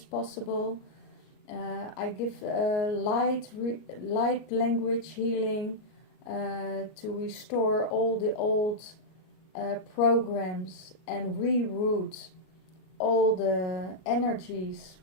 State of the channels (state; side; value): late; right; 38 ms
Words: I give light language healing to restore all the old programs and reroute all the energies